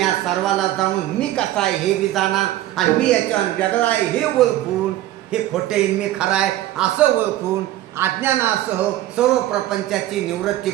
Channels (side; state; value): left; quieter; 14.4 dB